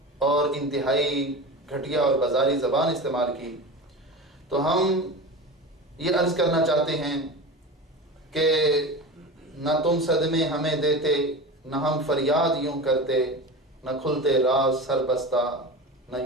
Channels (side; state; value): both; normal; correlation 0.29